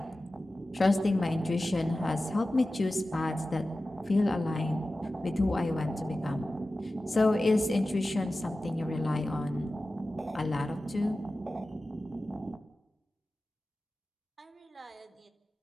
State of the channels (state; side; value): normal; both; correlation 0.95